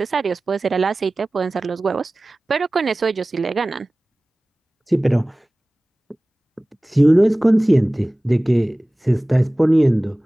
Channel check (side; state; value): both; normal; correlation 0.98